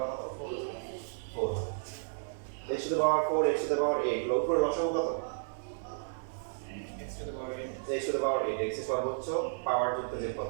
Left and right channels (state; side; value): silent; left; digital silence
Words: কত? 4। x to the power 4, x to the power 8, লব করে লসাগু কত? x to the power 8, x to the power 8, x এর সর্বোচ্চ পাওয়ার যুক্ত যে